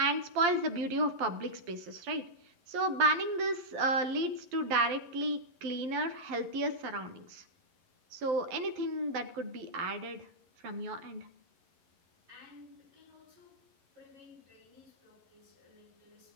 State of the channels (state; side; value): late; left; 11 ms